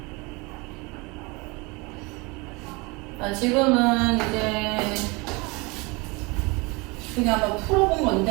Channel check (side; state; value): left; quieter; 26.7 dB